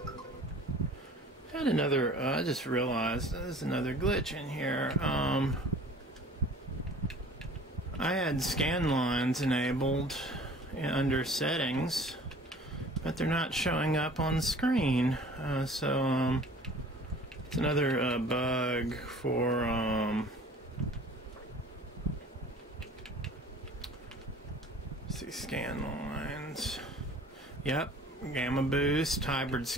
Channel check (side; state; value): both; normal; correlation 0.47